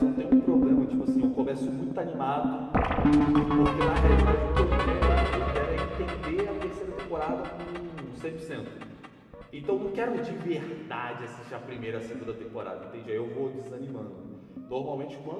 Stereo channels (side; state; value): both; identical; correlation 1.00